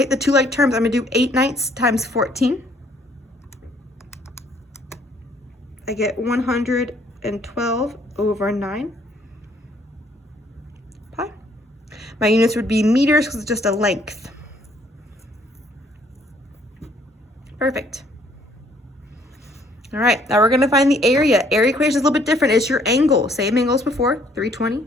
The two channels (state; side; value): normal; both; correlation 0.64